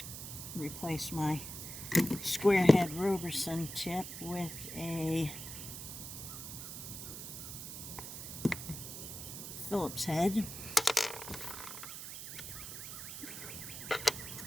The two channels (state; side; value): noise; right; hiss, 8 dB below the sound